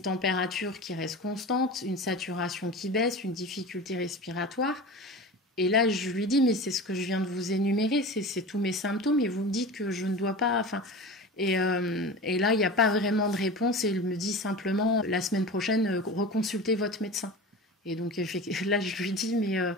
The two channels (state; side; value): normal; both; correlation 0.32